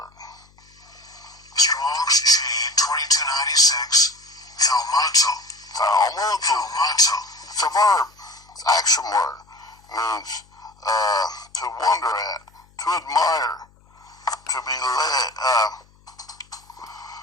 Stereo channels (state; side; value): noise; left; hum, 30 dB below the sound